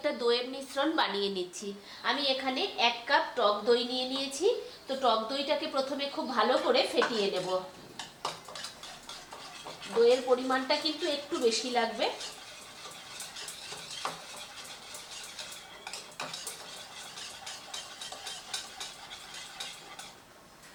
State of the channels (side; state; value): both; identical; correlation 1.00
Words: দইয়ের মিশ্রণ বানিয়ে নিচ্ছি। আমি এখানে 1 কাপ টক দই নিয়ে নিয়েছি। তো টক দইটাকে প্রথমে খুব ভালো করে ফেটিয়ে নেব। দইয়ের পরিমাণটা কিন্তু একটু বেশি লাগবে।